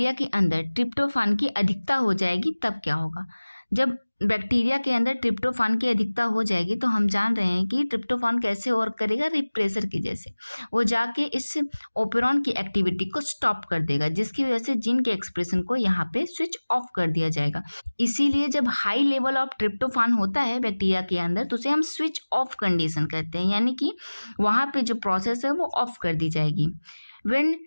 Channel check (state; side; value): inverted; both; correlation -1.00